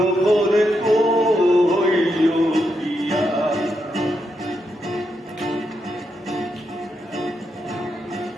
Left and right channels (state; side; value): normal; both; correlation 0.82